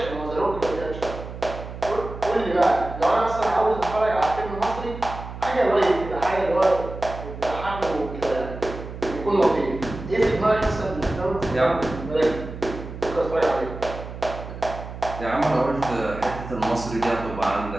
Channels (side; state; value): right; noise; hum, 11 dB below the sound